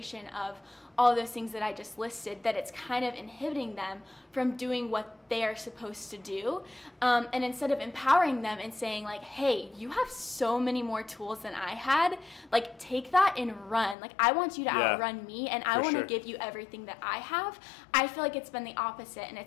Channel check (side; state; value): right; drops out; at 14.0 s